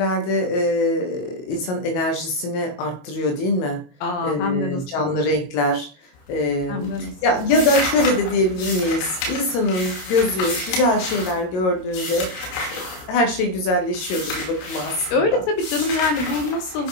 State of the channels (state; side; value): late; right; 22 ms